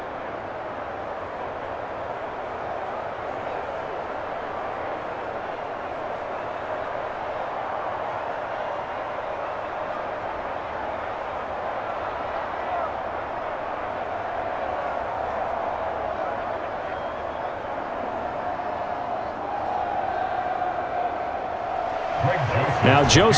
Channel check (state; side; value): identical; both; correlation 1.00